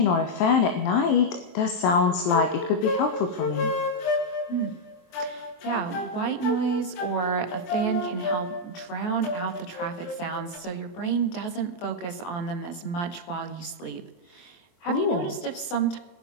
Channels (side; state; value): right; late; 23 ms